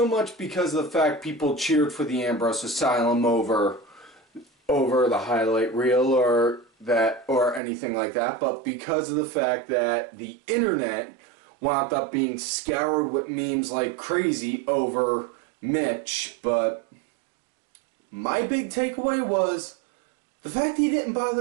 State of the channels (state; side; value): drops out; left; at 7.6 s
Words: much because of the fact people cheered for the Ambrose Asylum over the highlight reel or anything like that, but because of the fact that the internet wound up being scoured with memes like crazy over Mitch. But my big takeaway was the fact he didn't